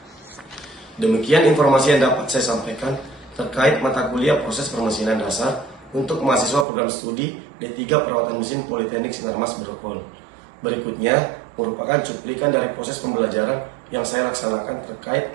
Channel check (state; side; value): drops out; left; at 6.7 s